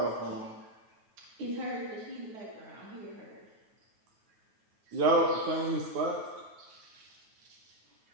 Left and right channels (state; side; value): late; left; 9.2 ms